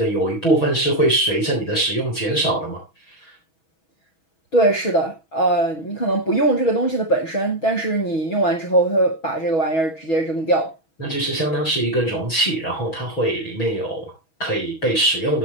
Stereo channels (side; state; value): right; late; 6.2 ms